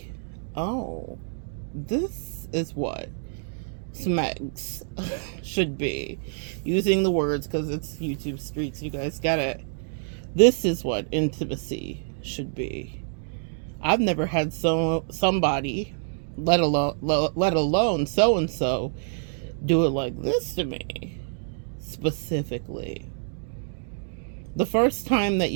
oh, this is what smegs should be. Using the words because it's YouTube streets, you guys get it. This is what intimacy should be. I've never had somebody, let alone so and so, do it like this to me specifically. The first time that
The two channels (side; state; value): left; silent; digital silence